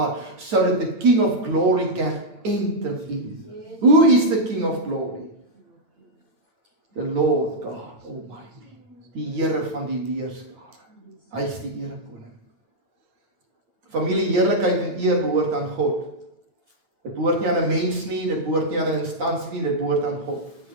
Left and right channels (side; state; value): left; late; 9.3 ms